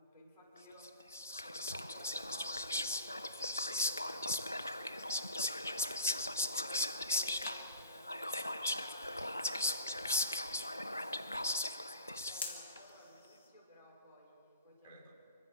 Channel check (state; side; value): inverted; both; correlation -0.43